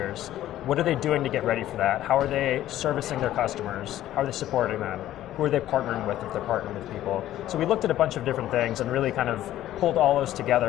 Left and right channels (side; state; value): right; quieter; 13.3 dB